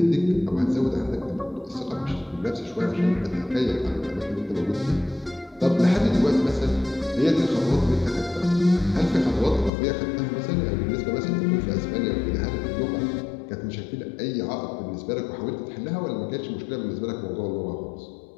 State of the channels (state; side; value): drops out; right; at 9.7 s